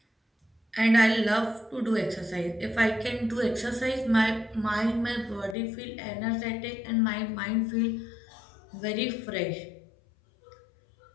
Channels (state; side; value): drops out; right; at 5.6 s